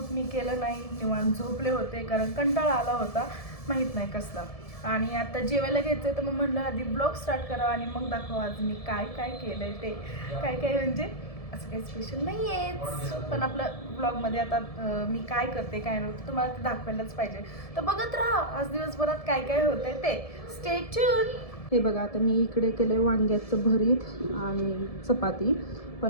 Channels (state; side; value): late; right; 1.7 ms